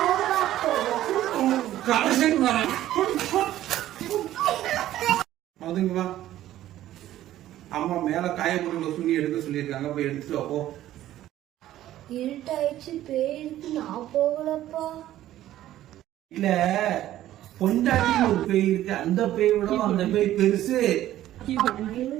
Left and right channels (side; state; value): left; quieter; 13.5 dB